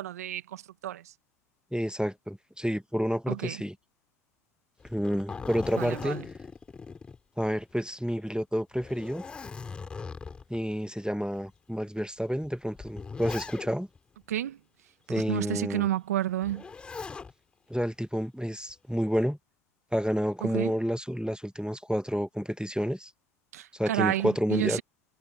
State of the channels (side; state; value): both; normal; correlation 0.73